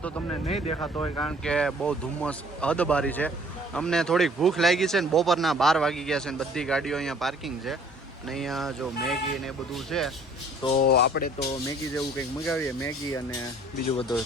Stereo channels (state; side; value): normal; both; correlation 0.56